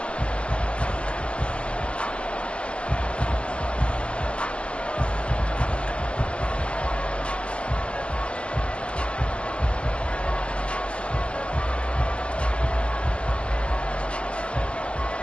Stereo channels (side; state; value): right; late; 0.055 ms